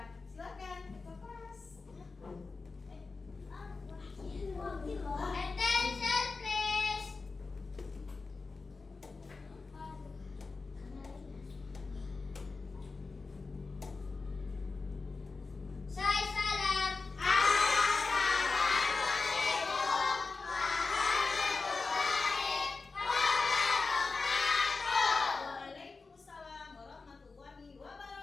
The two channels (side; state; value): right; quieter; 4.1 dB